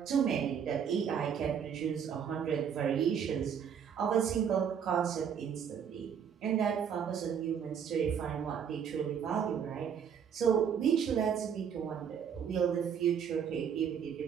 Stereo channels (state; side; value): quieter; left; 7.8 dB